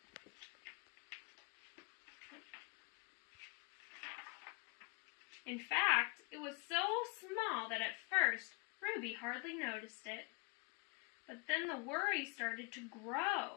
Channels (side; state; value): right; quieter; 29.6 dB